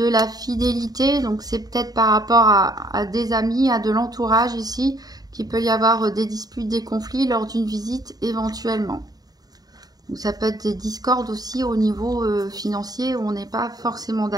la fidélité. Donc, c'est peut-être par rapport à des amis, à de l'entourage ici, qu'il peut y avoir des disputes, des conflits lors d'une visite éventuellement. Ou ça peut être des discordes aussi au niveau financier où on n'est pas forcément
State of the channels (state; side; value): late; left; 0.18 ms